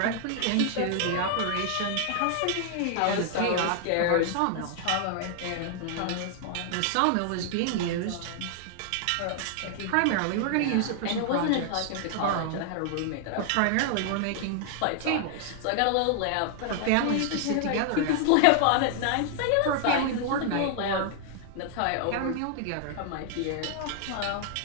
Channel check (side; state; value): both; different; correlation 0.00